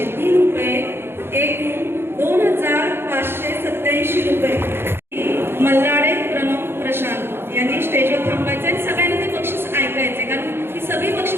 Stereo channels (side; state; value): left; late; 0.11 ms